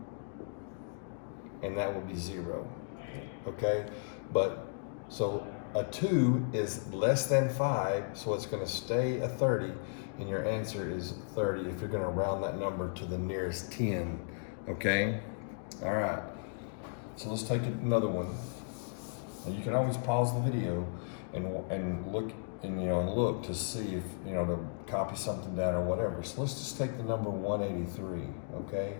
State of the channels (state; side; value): silent; right; digital silence